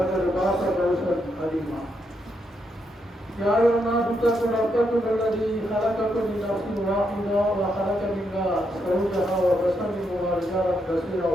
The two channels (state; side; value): normal; both; correlation 0.80